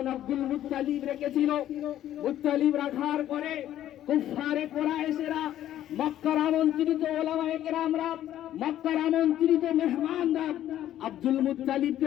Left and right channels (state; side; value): quieter; right; 12.2 dB